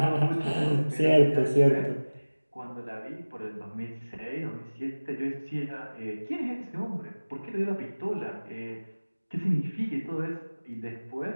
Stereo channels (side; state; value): both; inverted; correlation -1.00